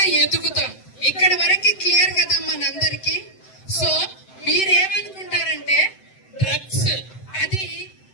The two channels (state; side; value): late; right; 7.8 ms